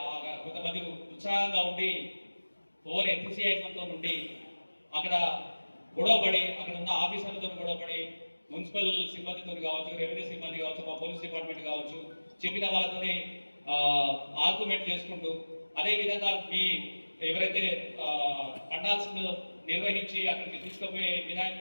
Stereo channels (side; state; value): both; inverted; correlation -1.00